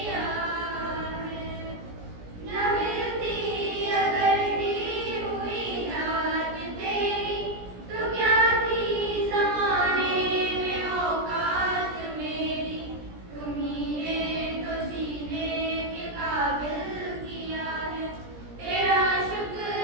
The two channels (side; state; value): left; late; 17 ms